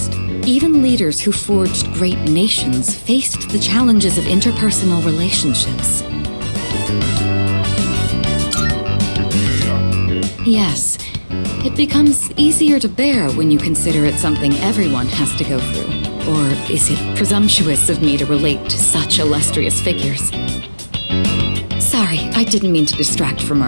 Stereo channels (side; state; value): both; inverted; correlation -1.00